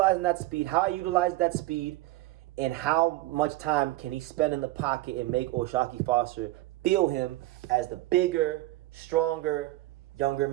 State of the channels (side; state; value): left; quieter; 18.0 dB